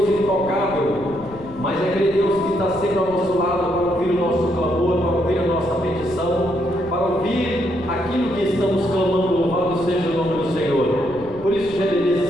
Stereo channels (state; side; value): noise; left; rumble, 18 dB below the sound